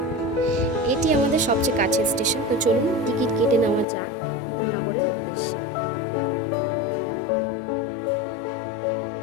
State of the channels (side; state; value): right; drops out; at 3.9 s